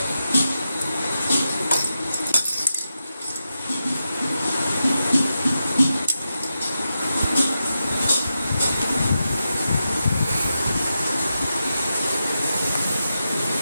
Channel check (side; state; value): both; inverted; correlation -0.89